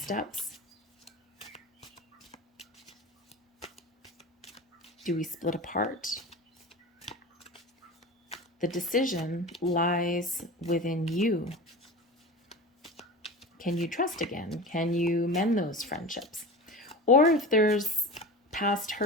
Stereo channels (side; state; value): both; normal; correlation 0.31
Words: steps? Do we split apart? The decision lies within you. Can you trust again? Can you mend those friendships? Or if there's past